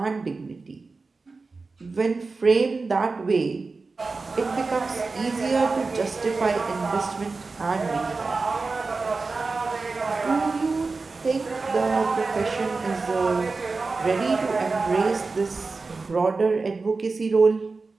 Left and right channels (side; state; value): left; quieter; 4.0 dB